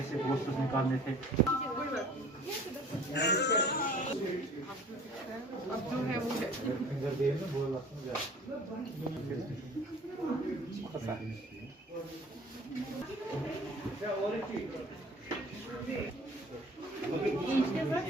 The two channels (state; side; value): normal; both; correlation 0.48